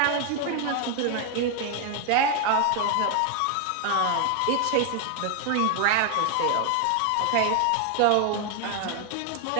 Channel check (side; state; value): both; different; correlation 0.00